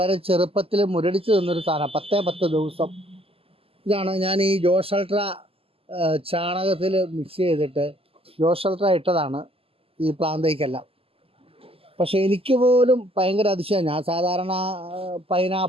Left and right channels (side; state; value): left; late; 0.28 ms